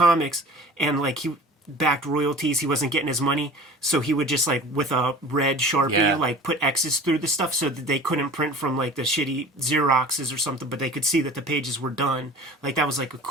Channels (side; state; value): both; normal; correlation 0.41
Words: and he backed royalties. He wasn't getting his money, so he would just with a red Sharpie put X's through the stuff so that they couldn't print from the shitty Xeroxes or something, but they could see that the pages were done. That was a